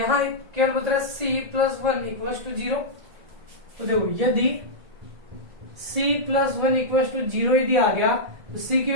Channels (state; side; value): late; left; 1.7 ms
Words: केवल बता रहा है सी प्लस 1 इक्वल टू 0। तो देखो यदि c प्लस 1 इक्वल टू 0 यदि आ गया तो c की